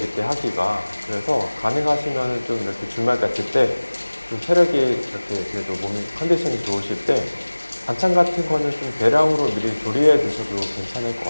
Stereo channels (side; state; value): both; inverted; correlation -1.00